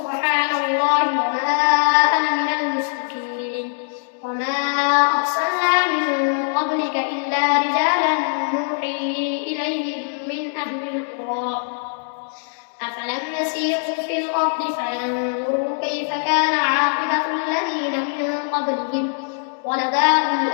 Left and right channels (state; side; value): silent; right; digital silence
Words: الله وما أنا من المشركين وما أرسلنا من قبلك إلا رجالا نوحي إليهم من أهل القرى أفلم يسيروا في الأرض فينظروا كيف كان عاقبة الذين من قبلهم ولدار